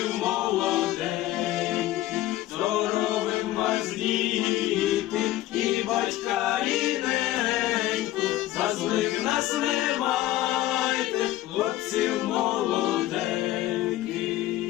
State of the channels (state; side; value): quieter; right; 15.2 dB